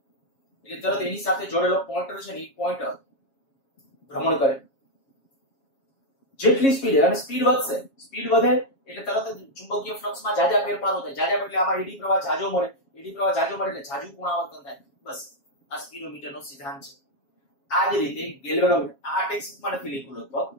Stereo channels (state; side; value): late; right; 7.3 ms